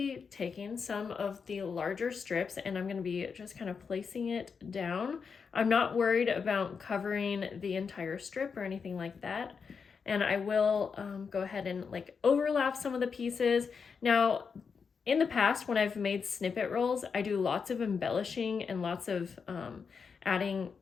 taking some of the larger strips and I'm going to be just kind of placing it down. I'm not worried about covering the entire strip or anything like that. And I will go ahead and overlap some of the pieces. Now, in the past, when I've made snippet rolls, I do lots of embellishing and lots of adding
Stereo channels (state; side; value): quieter; right; 5.8 dB